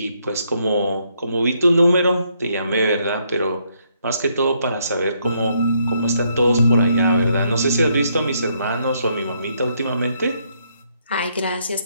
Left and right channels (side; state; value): both; inverted; correlation -0.73